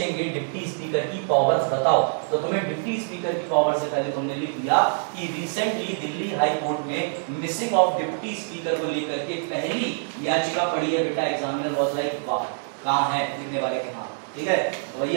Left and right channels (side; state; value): left; silent; digital silence